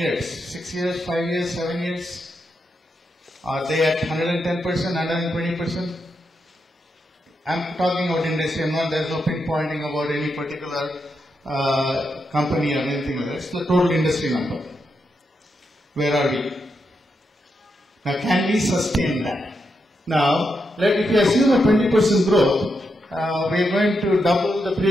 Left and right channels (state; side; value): normal; both; correlation 0.84